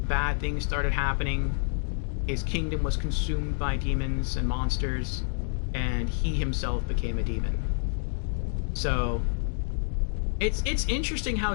Bad things started happening. His kingdom was consumed by demons and monsters, and he himself became a demon. So... It's interesting how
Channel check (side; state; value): right; silent; 59 dB below the other